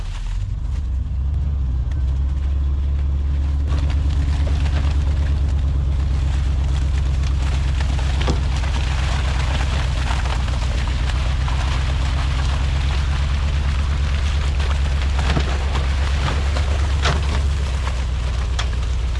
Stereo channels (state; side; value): identical; both; correlation 1.00